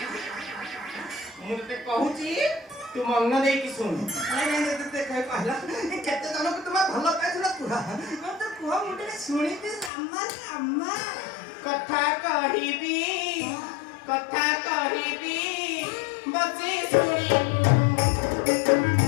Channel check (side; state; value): right; drops out; at 9.9 s